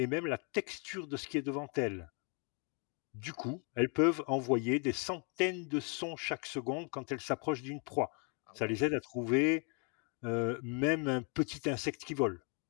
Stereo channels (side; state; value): right; quieter; 36.5 dB